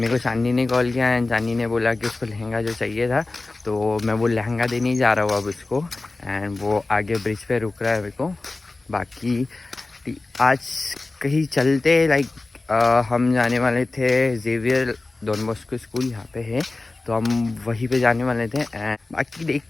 मेरे को चांदनी ने कॉल किया एंड चांदनी ने बोला कि उसको लहंगा जो चाहिए था, तो मैं वो लहंगा देने ही जा रहा हूँ अब उसको। एंड वो आगे ब्रिज पे रुक रहा है मेरे को। बाकी आज कहीं चलते लाइक हम जाने वाले थे जेवियर डॉन बॉस्को स्कूल, यहाँ पे है, तो हम वहीं पे जाने वाले थे। एंड बाकी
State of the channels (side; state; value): right; quieter; 3.3 dB